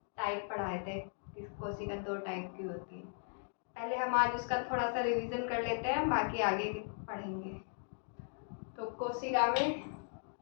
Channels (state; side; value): silent; right; digital silence